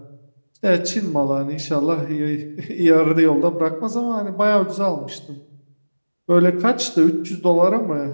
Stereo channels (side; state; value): both; inverted; correlation -1.00